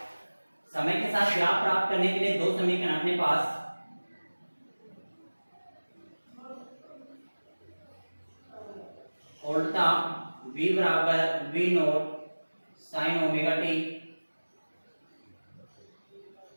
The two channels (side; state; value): both; inverted; correlation -1.00